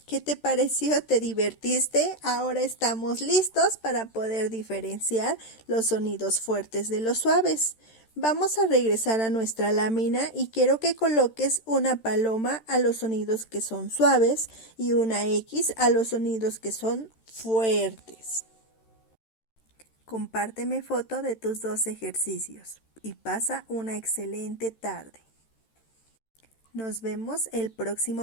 ¿Qué te pareció? ¿Te divertiste? Ahora estamos listos para poder diferenciar los sonidos fuertes de los suaves. Vamos a regresar a nuestra lámina y quiero que coloques una paloma a los sonidos que son suaves y una X a los sonidos que son fuertes. Compárteme foto de tus dos ejercicios y pasa una excelente tarde. Nos vemos el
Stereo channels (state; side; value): late; right; 13 ms